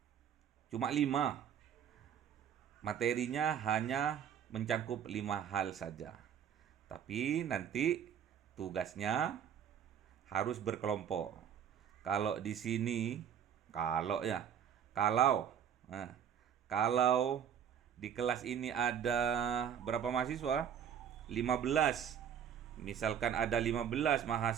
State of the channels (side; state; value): left; quieter; 8.7 dB